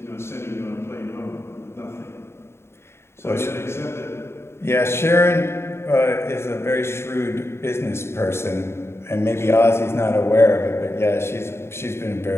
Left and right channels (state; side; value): late; right; 0.12 ms